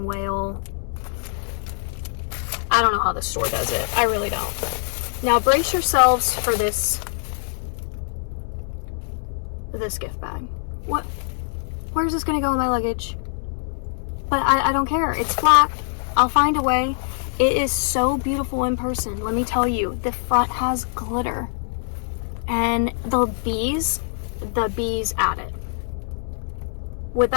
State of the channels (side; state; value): right; silent; digital silence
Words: whale. I don't know how the store does it. I really don't. Now brace yourselves for this this gift bag. What? Where's this gonna go in my luggage? But I don't care. It's flat. I'll find a way. It is so beautiful in person. Let me tell you, the front has glitter. And the bees add it.